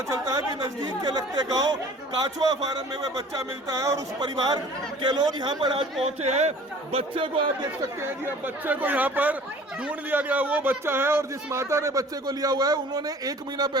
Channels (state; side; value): normal; both; correlation 0.48